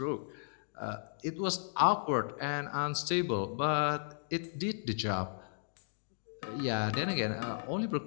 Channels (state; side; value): silent; right; digital silence